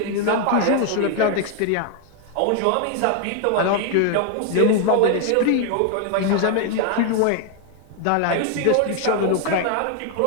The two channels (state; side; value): different; both; correlation 0.00